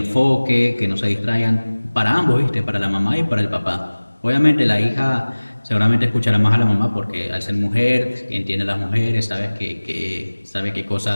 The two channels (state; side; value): inverted; both; correlation -1.00